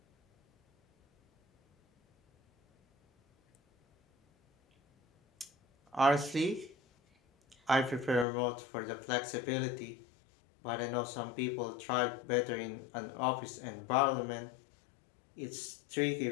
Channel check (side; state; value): right; drops out; at 8.2 s